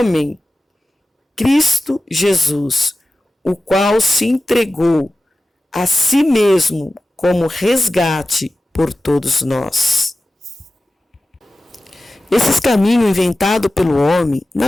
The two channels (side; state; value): both; normal; correlation 0.94